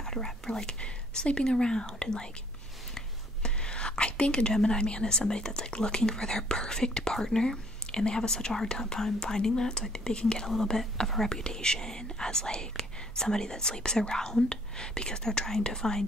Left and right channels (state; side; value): normal; both; correlation 0.62